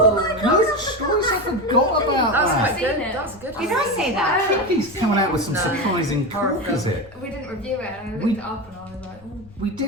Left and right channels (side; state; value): left; noise; rumble, 23 dB below the sound